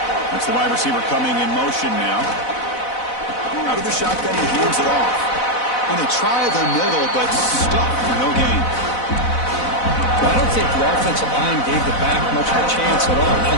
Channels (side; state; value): right; late; 4.0 ms